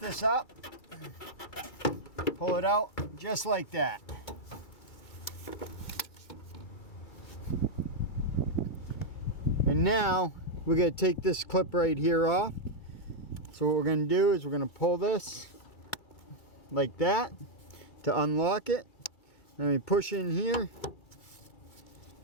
up, pull it out just like that. And now we're going to take this clip right here off. So what we're going to do is we're going to pull this like that to unlock it. Then we push in here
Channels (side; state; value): right; late; 2.2 ms